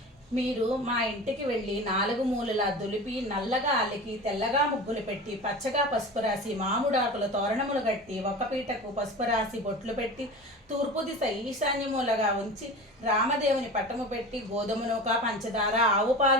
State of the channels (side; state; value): both; normal; correlation 0.33